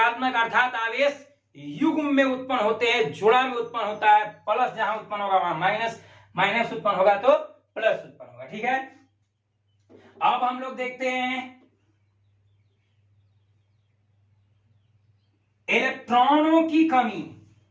अर्थात आवेश युग्म में उत्पन्न होते हैं, जोड़ा में उत्पन्न होता है। प्लस जहां उत्पन्न होगा वहां माइनस, माइनस उत्पन्न होगा तो प्लस उत्पन्न होगा। ठीक है, अब हम लोग देखते हैं इलेक्ट्रॉनों की कमी।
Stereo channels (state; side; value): identical; both; correlation 1.00